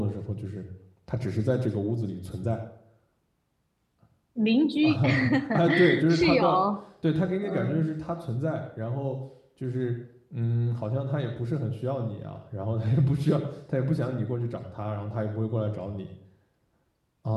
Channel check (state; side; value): identical; both; correlation 1.00